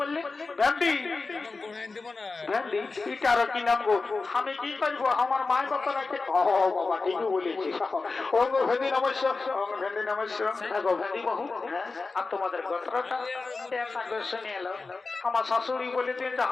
বললি ভ্যান্ডি ভ্যান্ডি এটা আর কি নাম গো আমি কি করবো আমার মায়ের কথা রাখে ও বাবা ঠিকই বলেছি ও গো ভ্যান্ডি নমস্য ভ্যান্ডি নমস্য গো ভ্যান্ডি বহু আর তোমাদের গোত্রটা একটা শুনে এলো আমার শাশুড়ি বলে দিন যে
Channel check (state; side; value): quieter; right; 4.0 dB